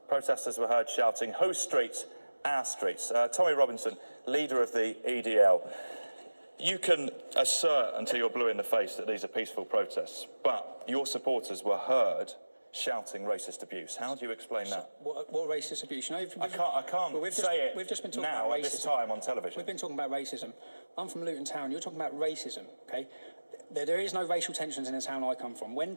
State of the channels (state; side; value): inverted; both; correlation -1.00